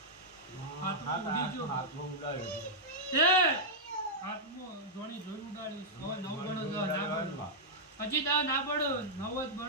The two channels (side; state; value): both; normal; correlation -0.08